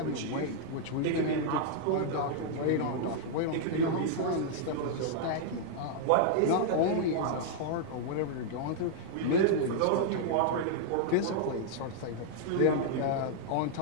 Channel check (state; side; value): different; both; correlation -0.01